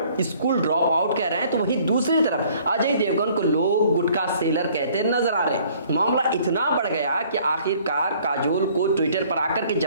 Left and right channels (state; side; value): inverted; both; correlation -0.58